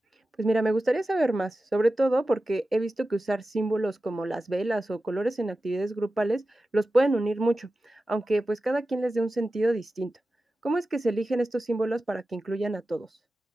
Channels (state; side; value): normal; both; correlation 0.94